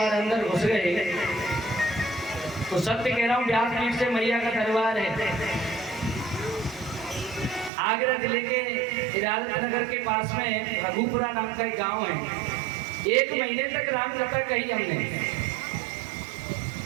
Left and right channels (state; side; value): drops out; left; at 7.7 s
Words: अंदर घुस गए तो सत्य कह रहा हूँ, व्यासपीठ से मैया का दरबार है। आगरा जिले के इरादत नगर के पास में रघुपुरा नाम का एक गांव है। 1 महीने तक राम कथा कही हमने।